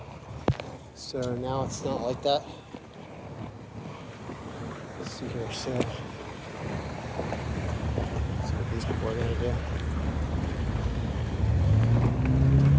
So now it's not like that. Let's see here. So, let's see what these people are going to do.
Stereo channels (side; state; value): both; identical; correlation 1.00